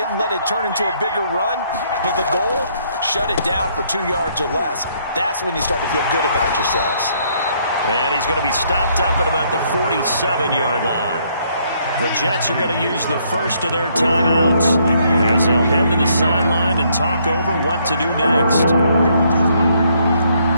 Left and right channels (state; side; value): inverted; both; correlation -0.69